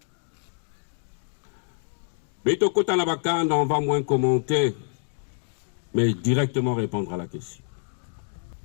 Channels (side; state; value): right; silent; digital silence